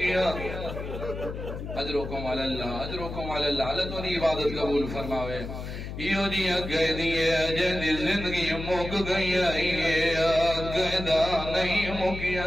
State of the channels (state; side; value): noise; left; hum, 8 dB below the sound